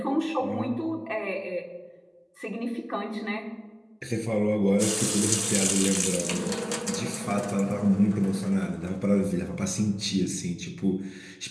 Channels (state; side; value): identical; both; correlation 1.00